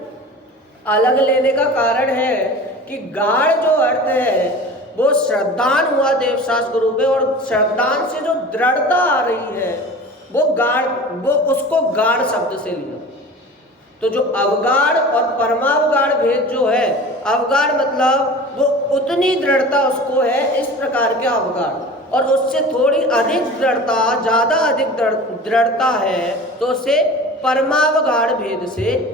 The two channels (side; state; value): both; normal; correlation 0.38